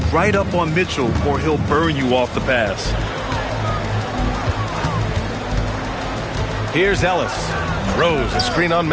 right up on Mitchell, or he'll burn you off the pass. Here's Ellis. Rose, a screen on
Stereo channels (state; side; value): identical; both; correlation 1.00